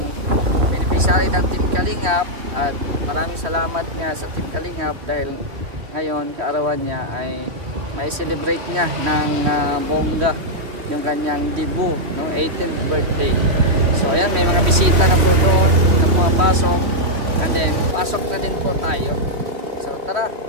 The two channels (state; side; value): late; left; 3.0 ms